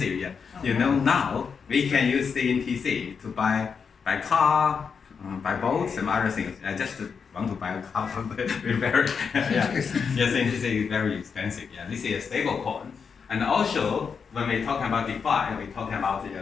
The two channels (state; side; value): quieter; right; 6.1 dB